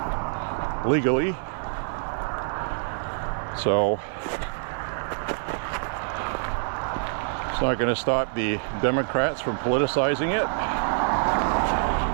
legally. So it's not going to stop the Democrats from politicizing it.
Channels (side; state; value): left; silent; 55 dB below the other